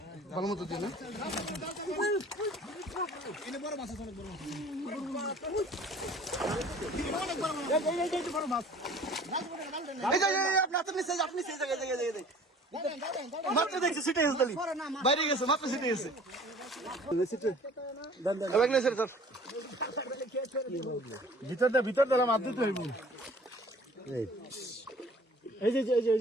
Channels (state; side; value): normal; both; correlation 0.49